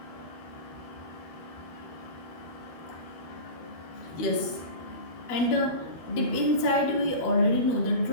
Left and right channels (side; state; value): right; late; 12 ms